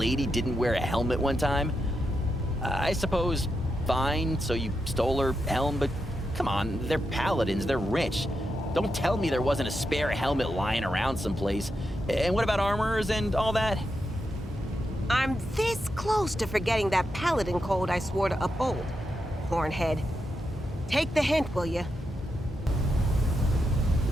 didn't wear a helmet one time? I suppose, fine, so you stole her helm, but come on, they're paladins, they're rich. Don't tell me there wasn't a spare helmet lying around someplace. And what about armors and all that? I'm this close to forgetting that paladin code I swore to uphold. Hornhead. Take the hint, will you?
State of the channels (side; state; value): both; normal; correlation 0.85